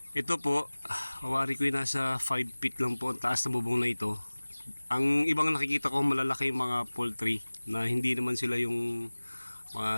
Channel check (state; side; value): inverted; both; correlation -1.00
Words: Ito po, awari ko yung nasa 5 feet lang po ang taas na bubong na ito. Ang ibang nakikita ko malalaki yung mga poultry na hindi naman sila yung